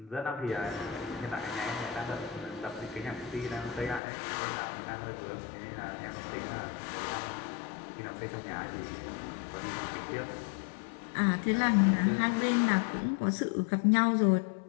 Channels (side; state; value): right; drops out; at 4.0 s